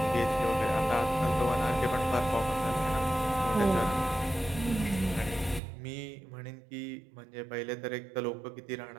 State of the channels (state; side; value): drops out; left; at 5.6 s